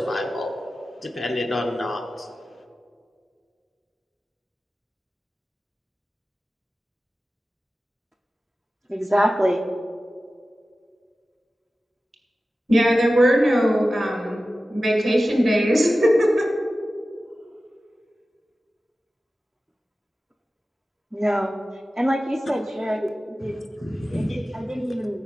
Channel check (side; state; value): both; normal; correlation 0.95